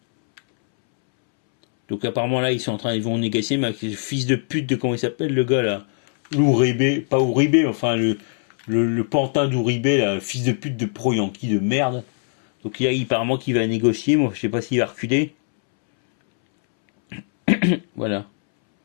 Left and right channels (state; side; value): silent; right; 65 dB below the other